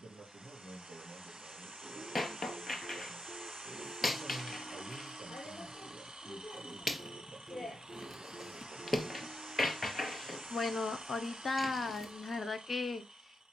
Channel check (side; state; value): both; normal; correlation 0.86